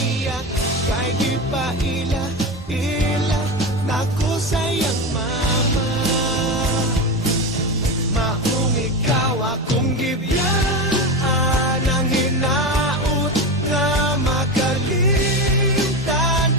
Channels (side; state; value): both; normal; correlation 0.20